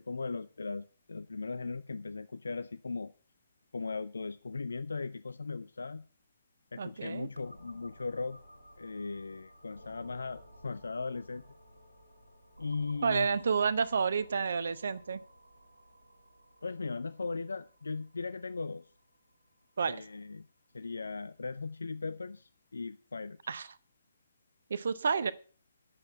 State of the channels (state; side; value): inverted; both; correlation -0.86